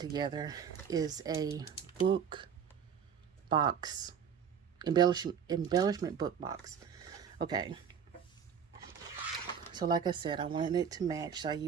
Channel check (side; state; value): left; quieter; 7.6 dB